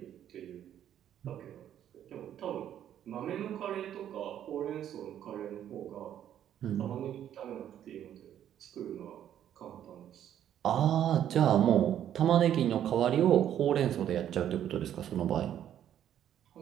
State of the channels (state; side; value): quieter; left; 10.5 dB